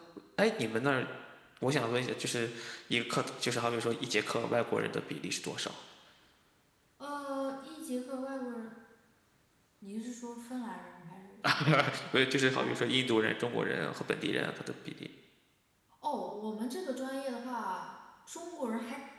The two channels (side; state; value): both; identical; correlation 1.00